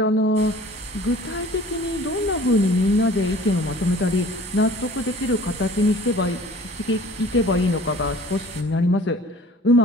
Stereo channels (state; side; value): normal; both; correlation 0.48